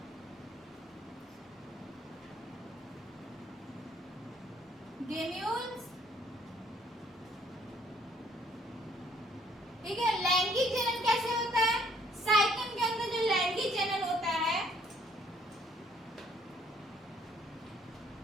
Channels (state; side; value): normal; both; correlation 0.63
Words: granules, ठीक है। लैंगिक जनन कैसे होता है, साइकन के अंदर जो लैंगिक जनन होता है